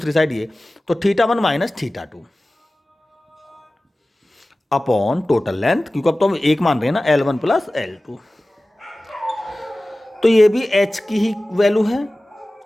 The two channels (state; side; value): normal; both; correlation 0.97